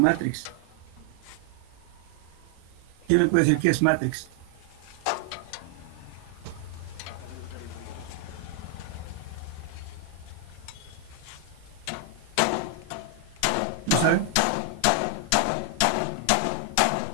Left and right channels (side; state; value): both; different; correlation 0.00